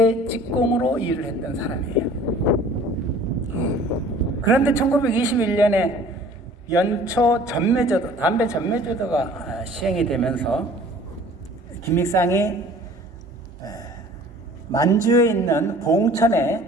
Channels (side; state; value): both; normal; correlation 0.49